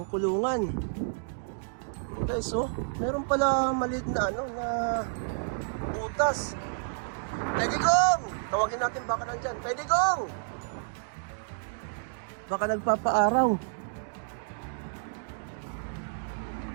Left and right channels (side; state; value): left; silent; digital silence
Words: kulungan. Guys, meron pala maliit na na butas. Tay Digong! Tawagin natin baka nandyan. Tay Digong! Baka nagpapaaraw.